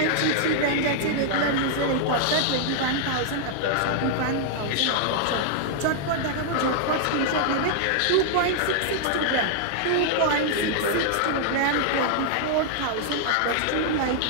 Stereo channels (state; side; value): different; both; correlation -0.01